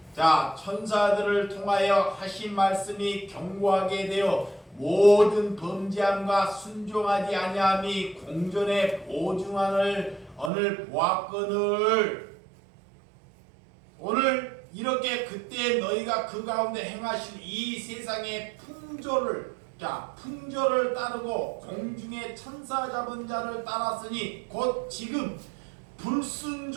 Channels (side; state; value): left; drops out; at 10.5 s